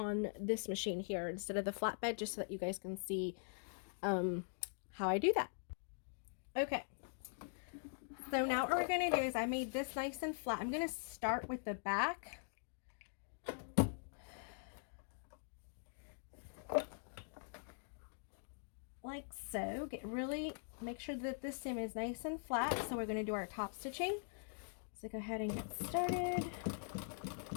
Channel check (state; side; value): silent; right; digital silence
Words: this machine here instead of the flatbed, just so that you guys can see how I do that. Okay. So now what we're going to do is I made this nice and flat. I'm going to start with the back. Like so. Make sure that this seam is nice and flat. So we're going to do our top stitching. So go ahead and get started.